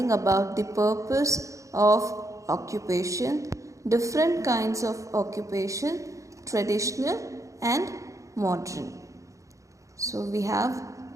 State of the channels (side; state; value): left; late; 0.15 ms